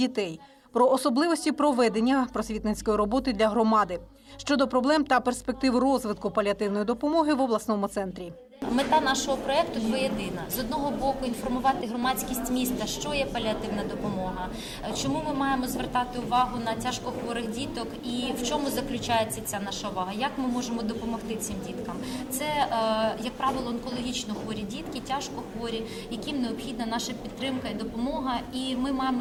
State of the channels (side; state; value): both; identical; correlation 1.00